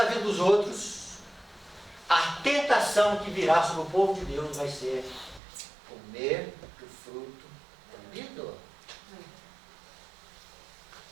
vida dos outros. A tentação que virá sobre o povo de Deus vai ser comer do fruto proibido.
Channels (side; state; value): left; drops out; at 5.4 s